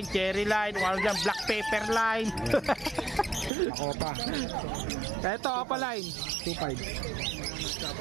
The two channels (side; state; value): left; drops out; at 3.5 s